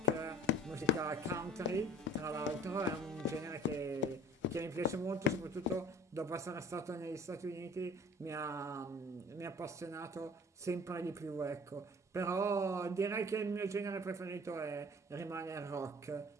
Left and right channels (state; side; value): normal; both; correlation 0.48